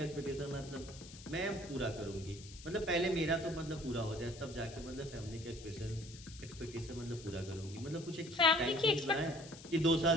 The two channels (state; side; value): noise; left; hiss, 17 dB below the sound